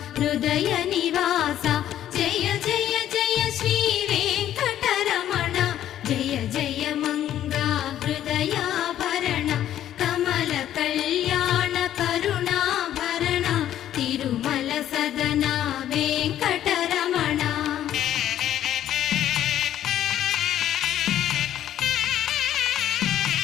హృదయ నివాస జయ జయ జయ శ్రీ వెంకటరమణ జయ జయ మంగ హృదయాభరణ కమల కళ్యాణ కరుణాభరణ తిరుమల సదన వెంకట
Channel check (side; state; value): right; quieter; 11.6 dB